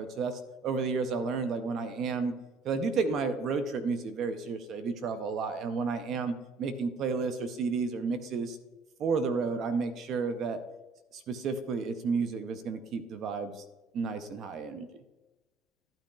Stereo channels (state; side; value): quieter; left; 4.3 dB